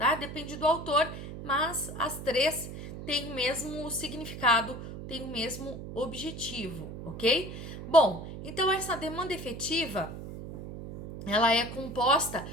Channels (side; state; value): right; noise; hum, 10 dB below the sound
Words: Depende do autor, mas as três têm o mesmo significado, têm o mesmo objetivo, ok? Bom, então essa demanda efetiva, ela é composta